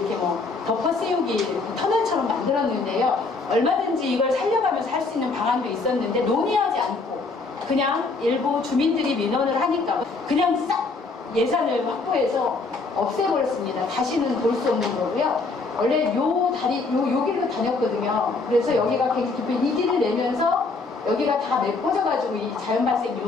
뭐 덮어 씌우기 터널처럼 만들었는데요. 얼마든지 이걸 살려가면서 할 수 있는 방안도 있었는데 논의하지 않고 그냥 일부 주민들이 민원을 하니까 그냥 싹 예산을 확보해서 없애버렸습니다. 다시는 볼 수 없는 거고요. 원래 요 다리, 요 길로 다녔거든요. 그래서 여기가 굉장히 깊이 이 길을 내면서 여기가 다 메꿔져가지고 이 자연발생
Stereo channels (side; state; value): right; quieter; 3.8 dB